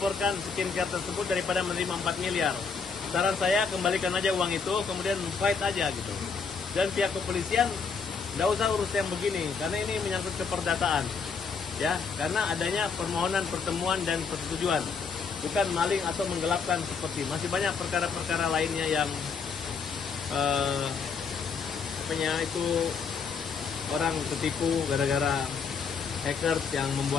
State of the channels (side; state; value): right; quieter; 5.5 dB